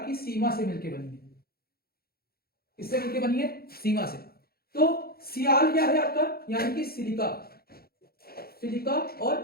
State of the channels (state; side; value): late; right; 0.44 ms